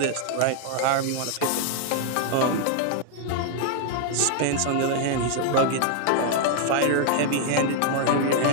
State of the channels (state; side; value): different; both; correlation 0.00